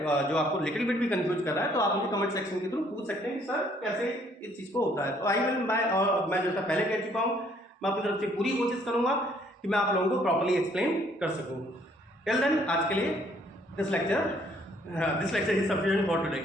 जो आपको लिटिल बिट भी कंफ्यूज कर रहा है तो आप मुझे कमेंट सेक्शन के थ्रू पूछ सकते हैं कि सर कैसे इस चीज़ को होता है। तो आई विल मैं जैसा पहले कह चुका हूँ, मैं अपनी तरफ से पूरी कोशिश करूंगा कि मैं आप लोगों को प्रॉपर्ली एक्सप्लेन कर सकूँ। टिल देन आज के लिए this lecture is sufficient for today.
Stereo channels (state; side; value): normal; both; correlation 0.64